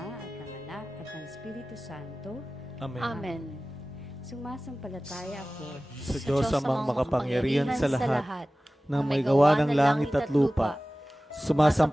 at ng Anak at ng Espiritu Santo. Amen. Amen. Sumasampalataya ako Sa Diyos amang makapangyarihan sa lahat, na may gawa ng langit at lupa.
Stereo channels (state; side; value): normal; both; correlation 0.97